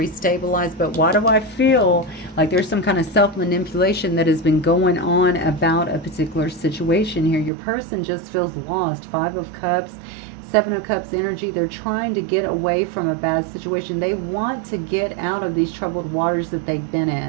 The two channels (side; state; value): left; drops out; at 7.5 s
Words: But why do I feel like there's some kind of self-manipulation that has been going on about a particular situation here? Your person just feels lost. 5 of Cups, 7 of Cups energy. They're trying to get away from a bad situation. They want to get out of these troubled waters that they've been